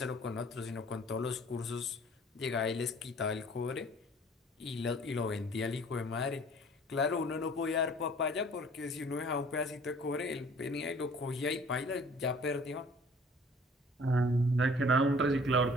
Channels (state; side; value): normal; both; correlation 0.52